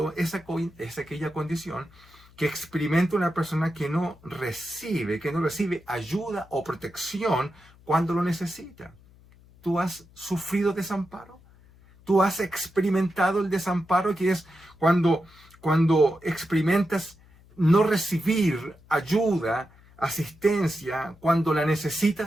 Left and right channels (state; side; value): noise; left; hum, 26 dB below the sound